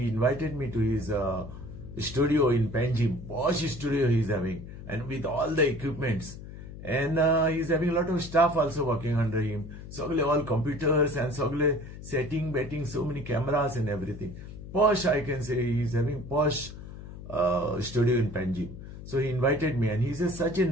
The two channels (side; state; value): left; noise; hum, 13 dB below the sound